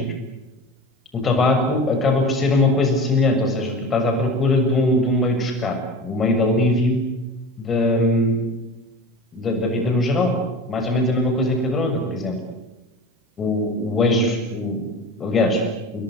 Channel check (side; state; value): both; normal; correlation 0.34